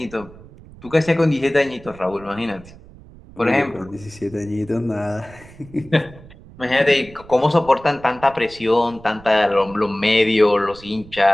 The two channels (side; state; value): right; noise; rumble, 21 dB below the sound